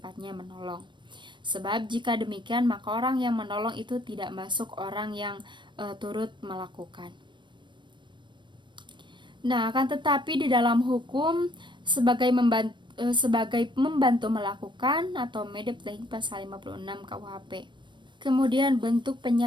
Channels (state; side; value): late; left; 0.22 ms